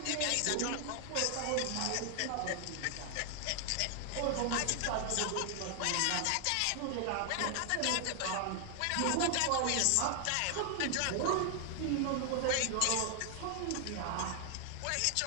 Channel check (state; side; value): different; both; correlation 0.00